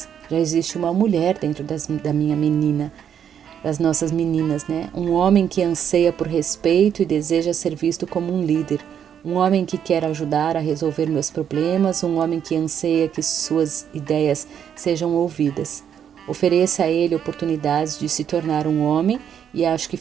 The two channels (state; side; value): quieter; left; 8.7 dB